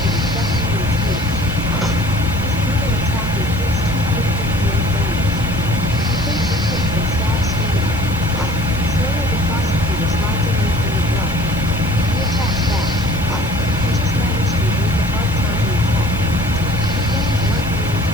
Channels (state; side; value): noise; right; hiss, 19 dB below the sound